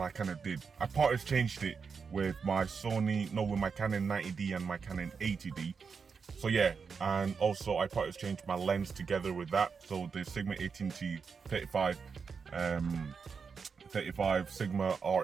I kind of did. I part exchanged it with my Sony, no, with my Canon 90D and my Canon 80D. So yeah, and also I part exchanged my lens together with that. So the Sigma 18 35 Sigma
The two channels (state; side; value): quieter; left; 5.6 dB